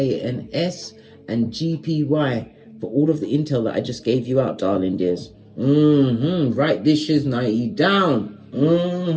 and S, and GPY for all of the intel that I just gave you out, darling dears. Write this shiznai down.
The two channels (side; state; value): both; identical; correlation 1.00